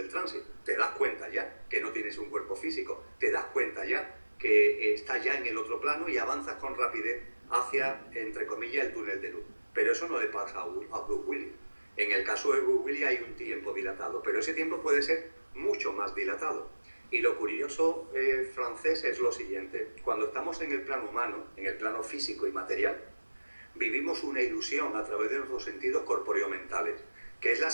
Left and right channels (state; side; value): inverted; both; correlation -1.00